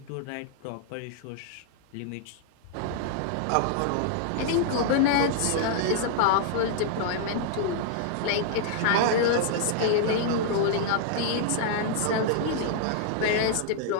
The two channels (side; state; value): both; different; correlation -0.01